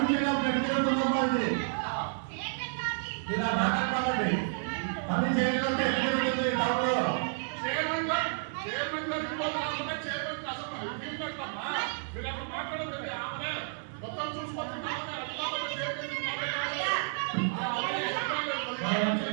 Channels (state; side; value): silent; left; digital silence